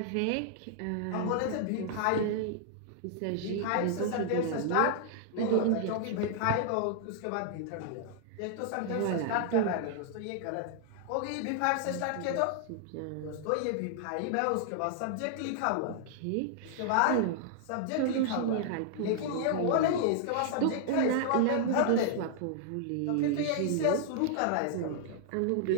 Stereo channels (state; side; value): different; both; correlation -0.01